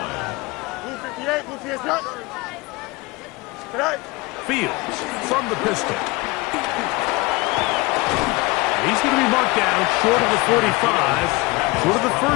Blue 58, blue 58, cut. Right. Fields from the pistol. He's going to be marked down short of the 45, short of the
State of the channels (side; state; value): right; quieter; 23.7 dB